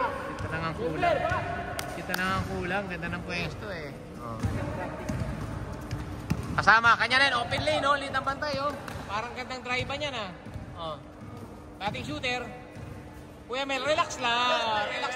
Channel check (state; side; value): identical; both; correlation 1.00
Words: na nga ang kulang. Ganda ng pwesto eh. Oh. Kasama, kanya rin, open lane, no? Lead ng bantay, oh. Parang gandang drive niya na. Oh. Dating shooter. Kuya Mel, relax lang